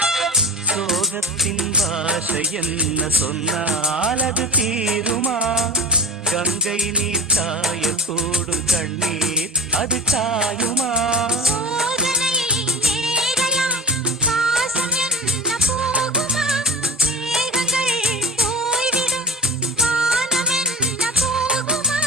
சோகத்தின் பாஷை என்ன சொன்னால் அது தீருமா, கங்கை நீர் காயக்கூடும் கண்ணீர் அது காயுமா,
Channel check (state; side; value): normal; both; correlation 0.34